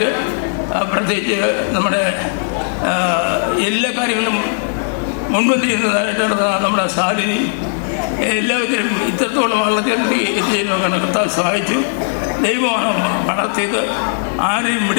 പ്രത്യേകിച്ച് നമ്മുടെ എല്ലാ കാര്യങ്ങളും മുൻപന്തി ചെയ്യുന്നതായിട്ടാണ് നമ്മുടെ സാലിനി, എല്ലാവരും ഇത്രത്തോളം വളർത്തി എത്തിച്ചതിനൊക്കെ കർത്താവ് സഹായിച്ചു. ദൈവമാണ് വളർത്തിയത്. ആരെയും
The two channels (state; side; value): silent; right; digital silence